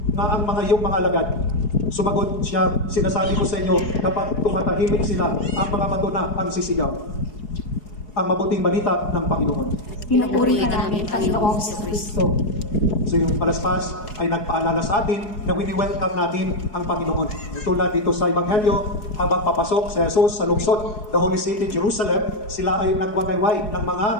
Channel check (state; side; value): late; right; 4.7 ms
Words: na ang mga iyong mga alagad. Sumagot siya, sinasabi ko sa inyo, kapag tumatahimik sila, ang mga bato na ang sisigaw. Ang mabuting balita ng Panginoon. Pinupuri ka namin, Panginoong Kristo. So yung palaspas ay nagpaalala sa atin na wini-welcome natin ang Panginoon. Tulad dito sa Ebanghelyo, habang papasok si Jesus sa lungsod, the Holy City, Jerusalem, sila ay nagwagayway ng mga